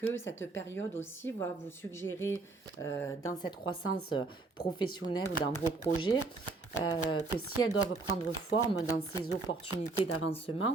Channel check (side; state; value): left; quieter; 3.6 dB